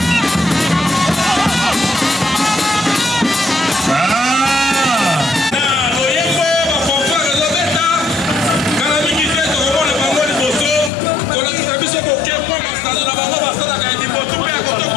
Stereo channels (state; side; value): drops out; right; at 10.9 s